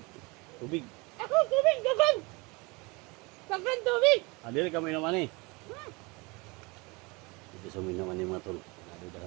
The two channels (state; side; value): quieter; left; 26.6 dB